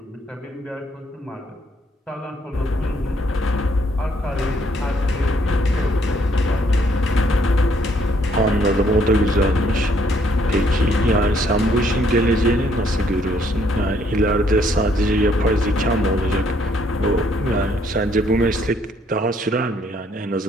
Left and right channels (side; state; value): both; normal; correlation 0.68